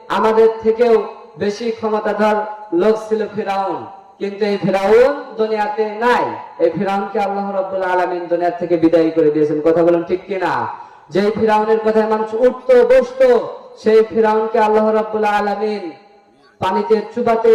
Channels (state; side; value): identical; both; correlation 1.00